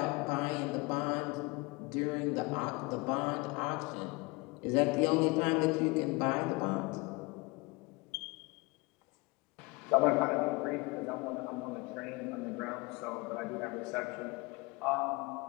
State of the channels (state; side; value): quieter; right; 25.6 dB